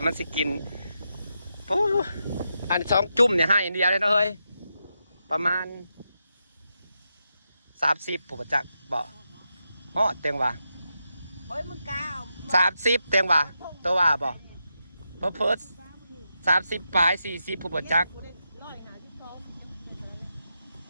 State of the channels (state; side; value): inverted; both; correlation -0.85